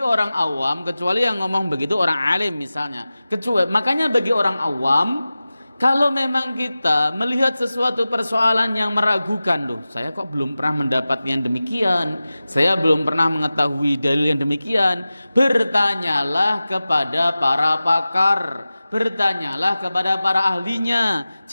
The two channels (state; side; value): inverted; both; correlation -0.96